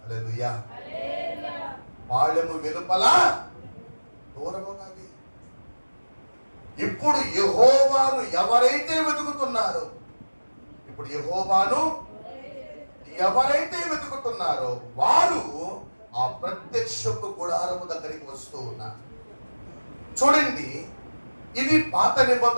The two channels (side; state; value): both; inverted; correlation -1.00